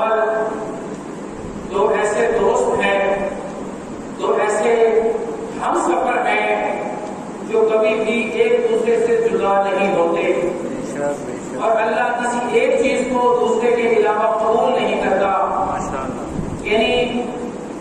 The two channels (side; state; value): both; identical; correlation 1.00